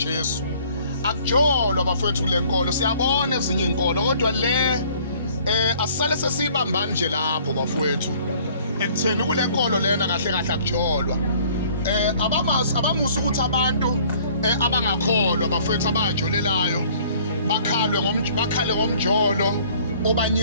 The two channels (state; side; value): inverted; both; correlation -0.56